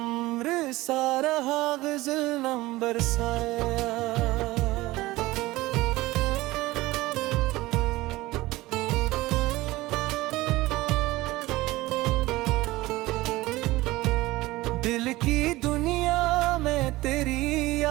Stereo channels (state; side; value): quieter; left; 19.0 dB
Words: सा रहा। गजल नंबर साया। दिल की दुनिया में तेरी